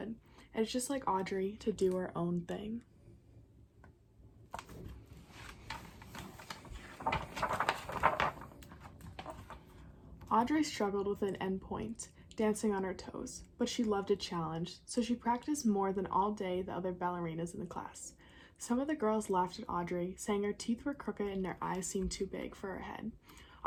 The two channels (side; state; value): both; identical; correlation 1.00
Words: And it's just like Audrey to do her own thing. Audrey struggled with an endpoint, dancing on her toes, but she loved a challenge, so she practiced more than all day the other ballerinas in the class. Some of the girls laughed at Audrey, saying her teeth were crooked and her eyes seemed too big for her head.